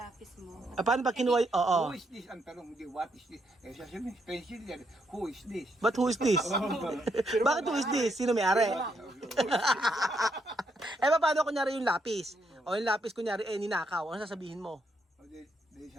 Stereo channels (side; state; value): both; normal; correlation 0.77